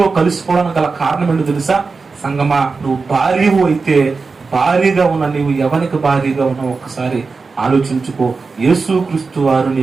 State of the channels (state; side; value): quieter; left; 4.4 dB